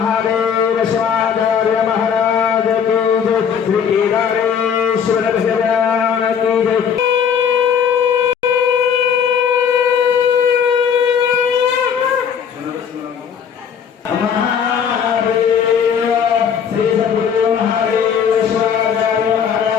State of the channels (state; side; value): quieter; right; 7.5 dB